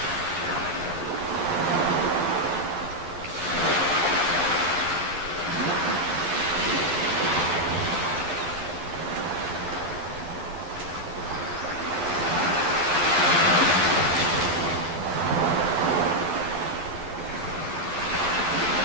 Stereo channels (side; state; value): left; late; 11 ms